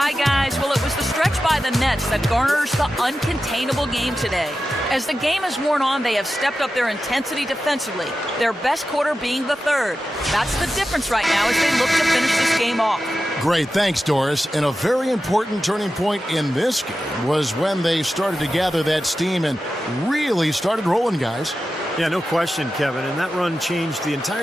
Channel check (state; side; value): normal; both; correlation 0.92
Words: guys. Well, it was the stretch by the Nets that garners the uncontainable game today. As the game has worn on, they have stepped up their intensity defensively, their best quarter being the third. That's the difference right now as they look to finish this game off. Great, thanks, Doris. And a very important turning point in this game was when they started to gather that steam and really started rolling, guys. Yeah, no question, Kevin. And that run changed the